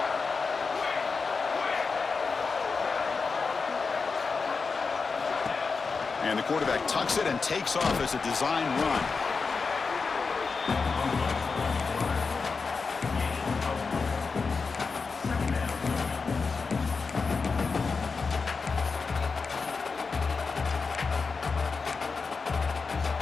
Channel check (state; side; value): quieter; right; 4.7 dB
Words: And the quarterback tucks it and takes off as a design run.